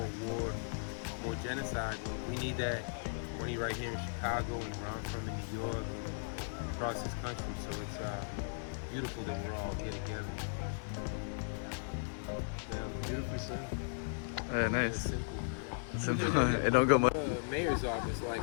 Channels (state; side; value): silent; right; digital silence